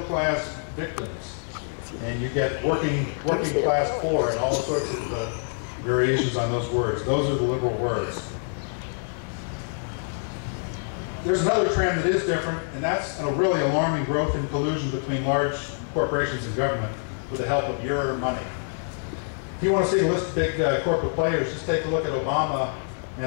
class, victims. And you get working class poor and all sorts of variations on those words. Those are the liberal words. There's another trend that is different, and that's a really alarming growth in collusion between large corporations and government with the help of your money. If you want to see a list of big corporate players, just take a look at Obama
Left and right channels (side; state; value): right; silent; digital silence